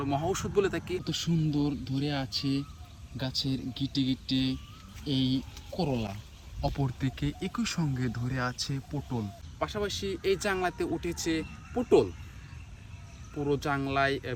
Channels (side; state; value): both; identical; correlation 1.00